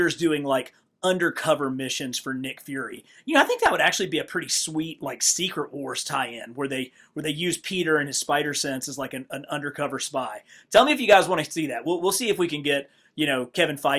doing like undercover missions for Nick Fury. I think that would actually be a pretty sweet like Secret Wars tie-in where they use Peter and his spider sense as like an undercover spy. Tell me if you guys want to see that. We'll see if we can get Kevin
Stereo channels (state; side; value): identical; both; correlation 1.00